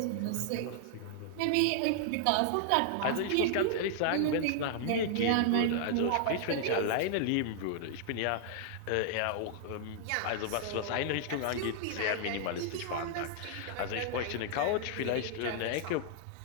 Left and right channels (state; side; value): different; both; correlation -0.01